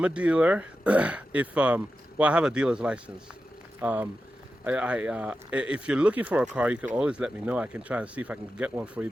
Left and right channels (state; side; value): normal; both; correlation 0.91